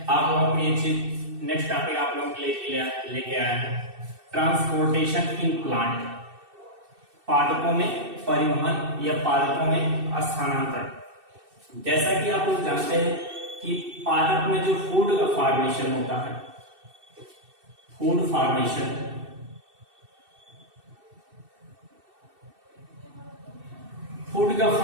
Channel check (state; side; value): late; left; 2.6 ms